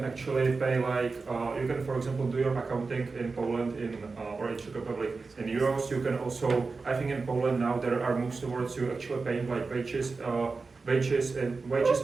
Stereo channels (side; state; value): left; quieter; 4.2 dB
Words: actually pay like you can, for example, do your accounting in Poland or in Czech Republic in euros. You can also, I think in Poland now there are moves towards you actually paying like wages